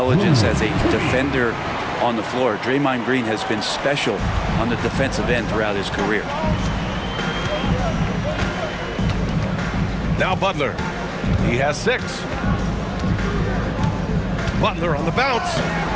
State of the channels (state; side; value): identical; both; correlation 1.00